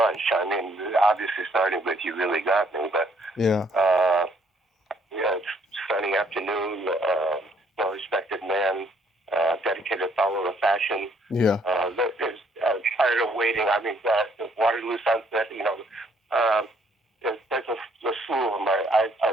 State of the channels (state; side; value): normal; both; correlation 0.66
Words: I mean, obviously starting with "You Really Got Me," but yeah, "Sunny Afternoon," "Well Respected Man," "Dedicated Follower of Fashion." Yeah. There's "Tired of Waiting." I mean, "Waterloo Sunset." You know, there's a slew of them.